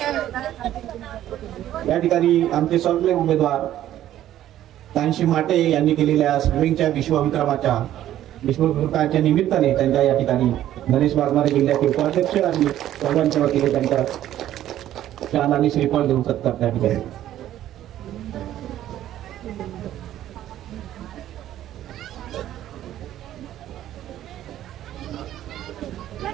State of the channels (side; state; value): left; quieter; 12.5 dB